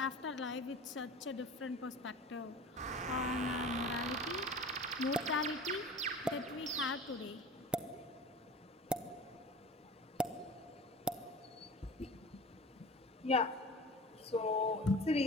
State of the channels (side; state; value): both; normal; correlation 0.37